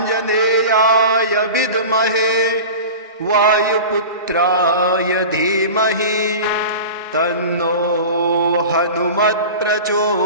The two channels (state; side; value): inverted; both; correlation -0.33